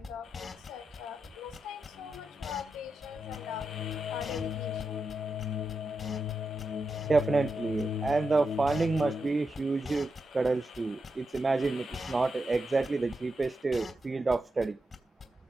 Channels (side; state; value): both; normal; correlation 0.87